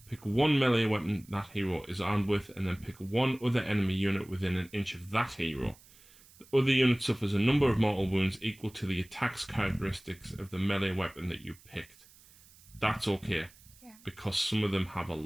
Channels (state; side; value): noise; right; hiss, 25 dB below the sound